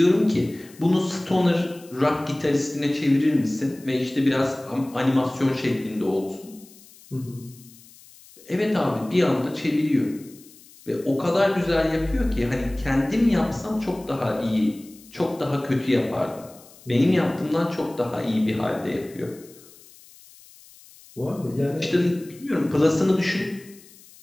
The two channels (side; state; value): left; noise; hiss, 23 dB below the sound